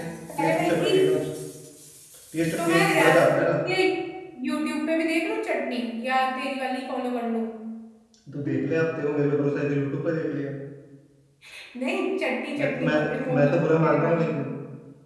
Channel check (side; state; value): both; identical; correlation 1.00